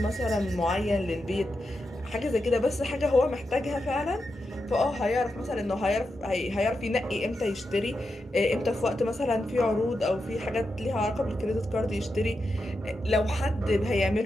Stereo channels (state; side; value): normal; both; correlation 0.87